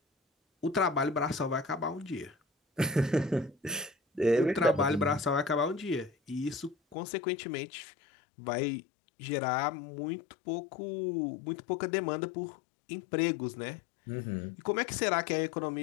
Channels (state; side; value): drops out; right; at 7.0 s